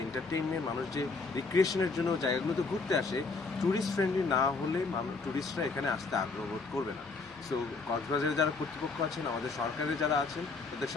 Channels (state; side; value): quieter; right; 4.1 dB